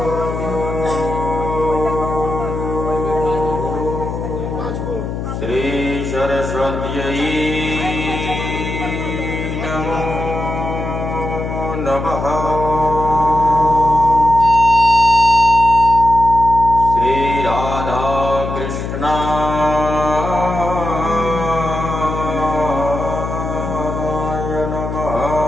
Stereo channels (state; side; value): noise; left; hum, 5 dB below the sound